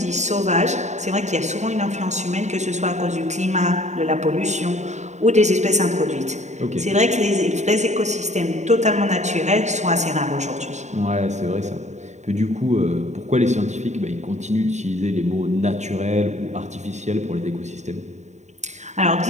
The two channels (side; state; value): left; late; 0.34 ms